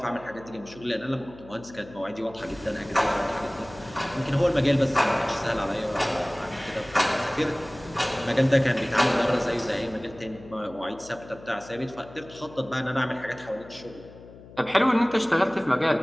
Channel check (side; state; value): left; noise; hum, 19 dB below the sound